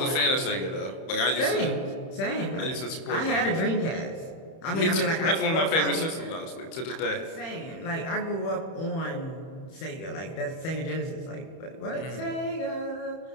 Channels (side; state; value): right; late; 31 ms